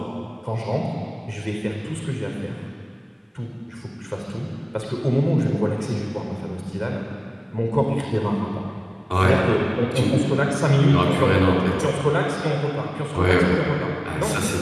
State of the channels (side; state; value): both; identical; correlation 1.00